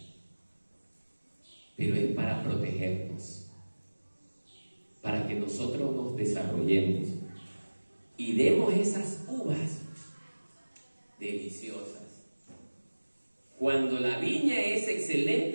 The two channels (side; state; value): both; inverted; correlation -1.00